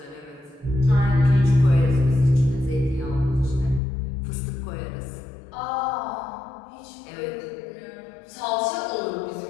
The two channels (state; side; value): drops out; right; at 3.8 s